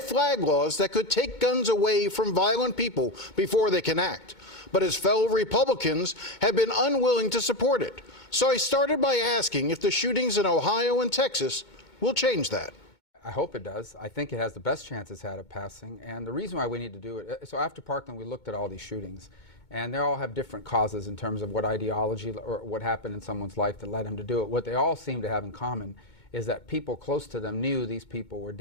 flag laws that could take guns away from violent people before they can act. But his fellow Republicans have been unwilling to support it. So I started by asking if the shootings in Ohio and Texas will change that. I hope it does. I think it has the best chance it's had of passing. And the reason why we need to do it, so after Parkland, we looked at all these shootings. And they all have different causes in terms of what ideology or what happened in someone's life that led them to do it. What they all seem to have in common is that people close to them knew these people were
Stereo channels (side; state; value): right; late; 2.2 ms